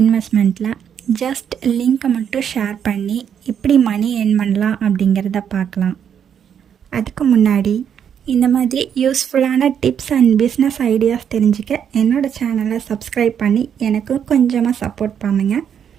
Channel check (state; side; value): quieter; left; 8.3 dB